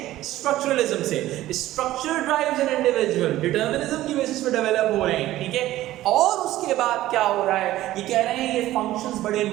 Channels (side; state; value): left; quieter; 15.1 dB